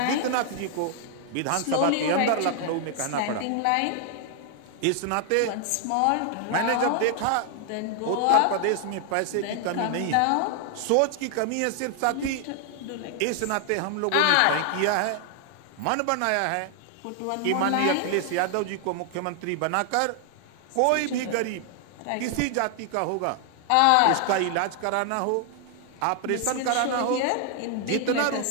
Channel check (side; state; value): both; different; correlation 0.00